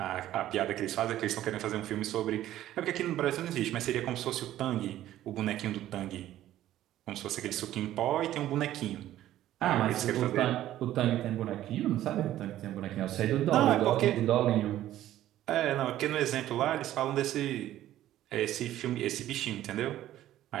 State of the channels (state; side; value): quieter; left; 13.3 dB